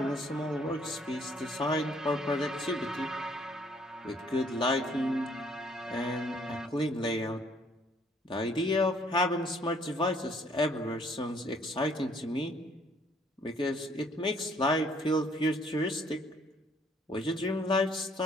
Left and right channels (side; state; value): both; normal; correlation 0.63